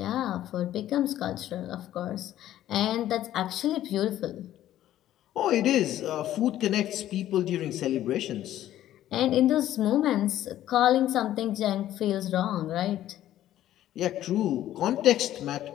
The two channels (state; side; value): quieter; right; 12.8 dB